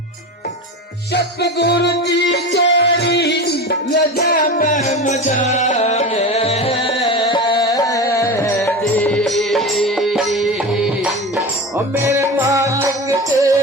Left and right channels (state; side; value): normal; both; correlation 0.27